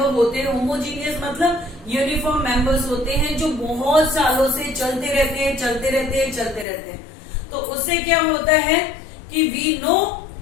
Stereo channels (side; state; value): right; drops out; at 6.7 s